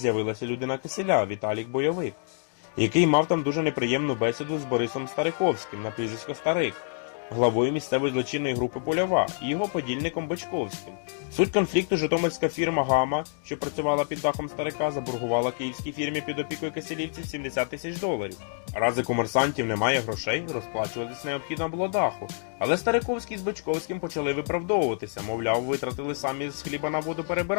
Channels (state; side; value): silent; right; digital silence